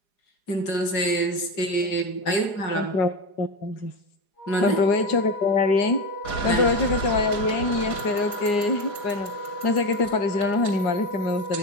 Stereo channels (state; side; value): late; right; 4.9 ms